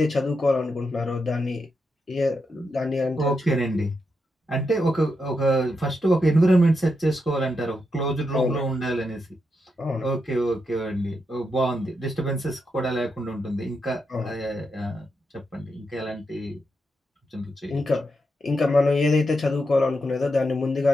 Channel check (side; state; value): both; normal; correlation 0.84